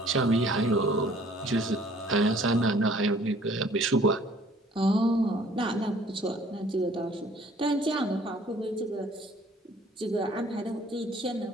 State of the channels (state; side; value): normal; both; correlation 0.56